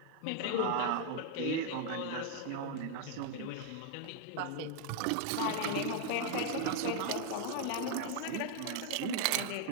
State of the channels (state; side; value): different; both; correlation 0.00